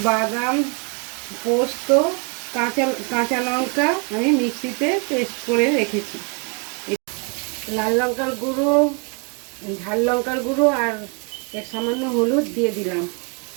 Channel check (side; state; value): left; quieter; 36.3 dB